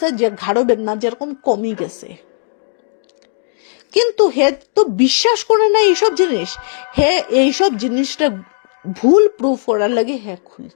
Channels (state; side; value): silent; right; digital silence